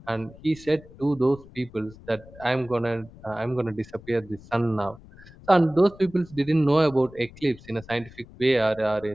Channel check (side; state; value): left; noise; rumble, 21 dB below the sound